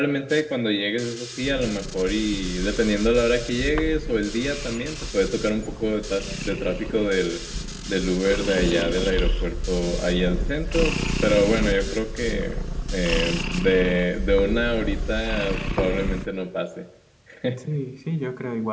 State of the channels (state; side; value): identical; both; correlation 1.00